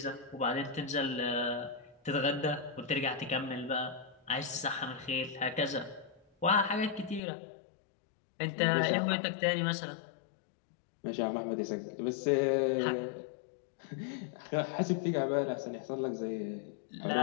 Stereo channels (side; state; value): right; drops out; at 7.2 s